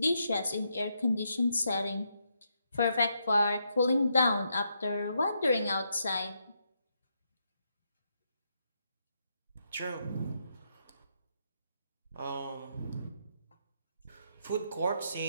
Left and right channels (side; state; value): both; inverted; correlation -0.79